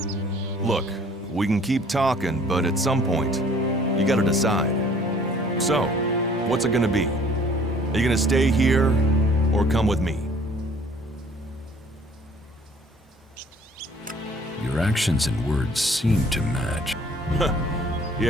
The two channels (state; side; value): normal; both; correlation 0.55